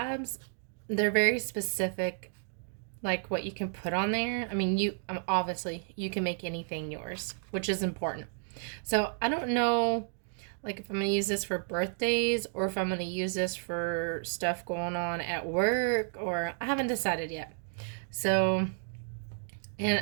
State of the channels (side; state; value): left; silent; 57 dB below the other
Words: They're very specific, like what you can put on there. I mean, obviously you can make anything yours, which is important. So I don't know, like if I'm going to use this for birthdays or if I'm going to use this for stuff going on at work, or I haven't decided yet. So, and